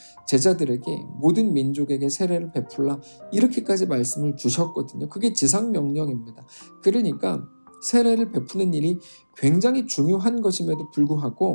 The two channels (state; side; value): inverted; both; correlation -1.00